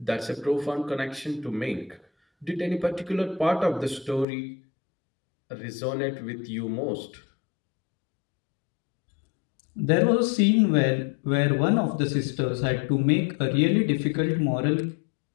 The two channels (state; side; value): drops out; right; at 4.2 s